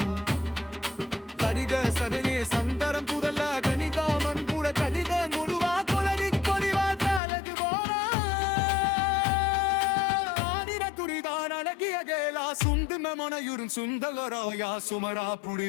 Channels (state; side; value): drops out; right; at 7.2 s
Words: கரிக சதனே சந்தரம் புதல்ல கணிதாமன் கூட கடித முழுவா கொலடி கொலிவா தாலகு போரா ஆதிர துரிதான் அழகிய கேலா சுந்தும மனையுறும் சுந்தகராயா சுமரா